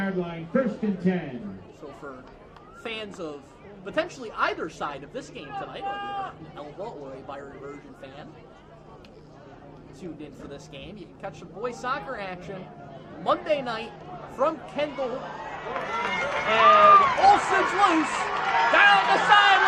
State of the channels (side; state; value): both; identical; correlation 1.00